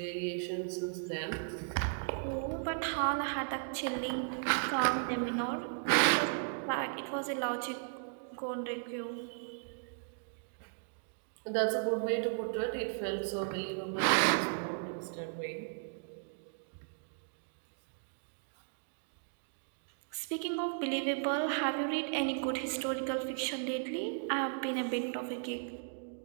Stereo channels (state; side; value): silent; left; digital silence